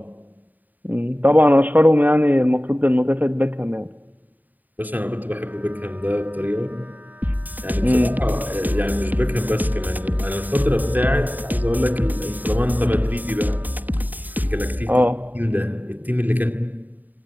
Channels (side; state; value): left; late; 0.084 ms